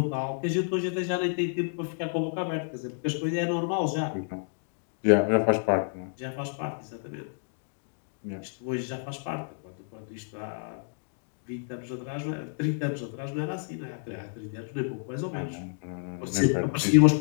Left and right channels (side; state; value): right; silent; digital silence